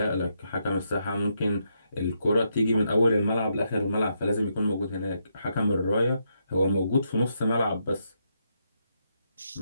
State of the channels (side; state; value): both; inverted; correlation -0.79